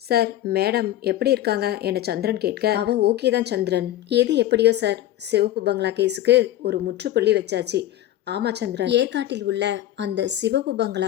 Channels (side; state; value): right; quieter; 13.3 dB